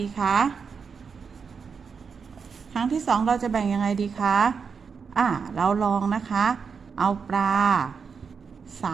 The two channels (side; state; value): left; quieter; 5.8 dB